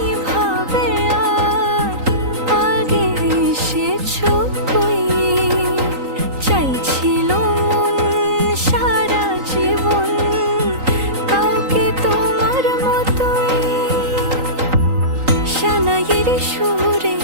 ভাবে আর আগে এসেছো কই, চাইছিল মন সারা জীবন কাউকে তোমার মতোই। সানাইয়ের সুরে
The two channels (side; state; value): left; late; 3.9 ms